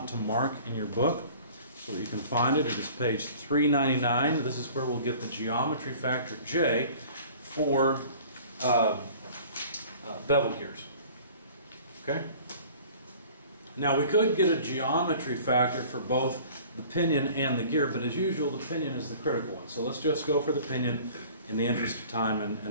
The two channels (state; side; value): inverted; both; correlation -0.47